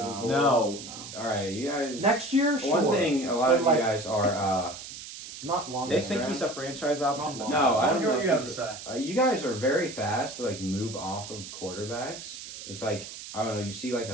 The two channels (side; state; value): right; noise; hiss, 12 dB below the sound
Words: forward? No. All right, you guys. Next year, sure. One thing, a lot of But, you guys are. Not long. They term. think he's a franchise option. Not but No, I don't What know. do If you have to he's- say? you guys are very fast to like move off of quarterbacks. It's like I don't know. You see like